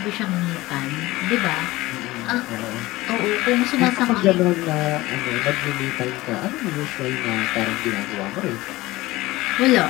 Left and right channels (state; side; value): quieter; right; 18.9 dB